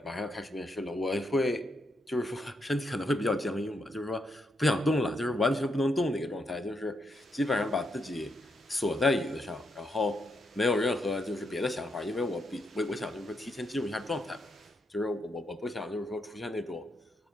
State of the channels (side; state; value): both; normal; correlation 0.80